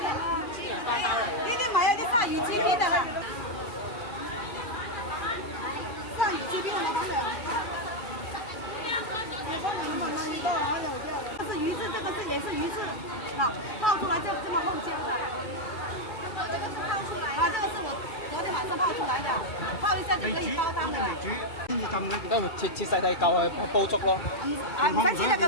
上有鸡皮的了，上有鸡皮的老板的。这是鱼翅，这个是也是鱼翅，啊，泡出来就这么厚煎的。这个是泡出来的。啊，这个是我昨天晚上泡出来的，泡一下就可以包裝的。未煮，先至浸嘅。都切細細嚿去煲粥咯。唔使切得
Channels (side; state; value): right; late; 2.4 ms